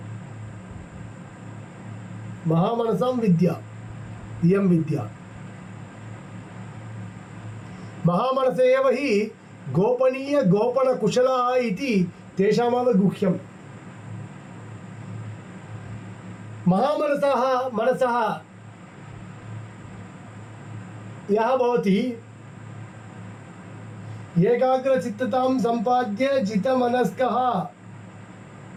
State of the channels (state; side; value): identical; both; correlation 1.00